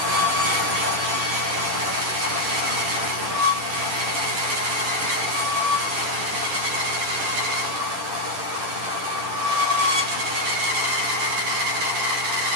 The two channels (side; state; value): left; late; 10 ms